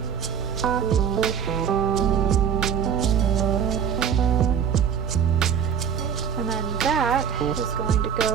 And then that is going to go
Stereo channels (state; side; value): quieter; left; 7.7 dB